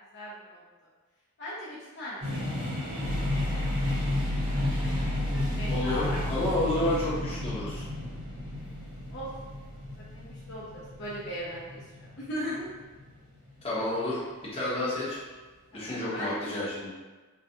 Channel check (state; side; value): normal; both; correlation 0.56